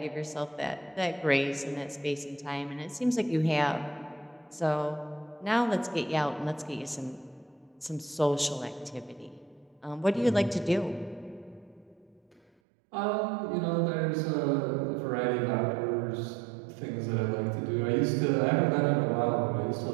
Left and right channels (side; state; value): left; drops out; at 12.5 s